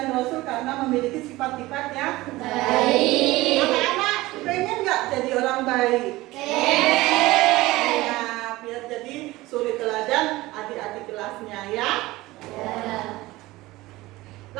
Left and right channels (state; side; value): quieter; left; 19.1 dB